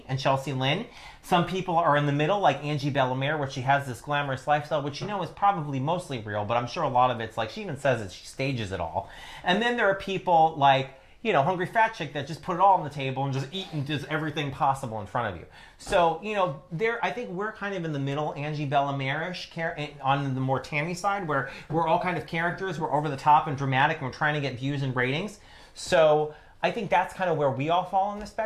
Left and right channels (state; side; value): identical; both; correlation 1.00